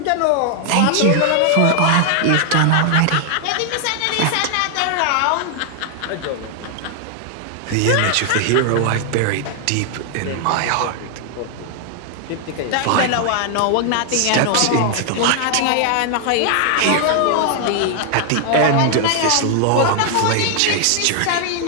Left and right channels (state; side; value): different; both; correlation 0.00